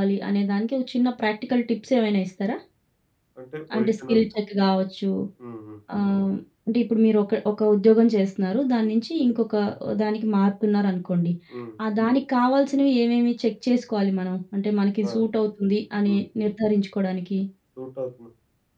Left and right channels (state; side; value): identical; both; correlation 1.00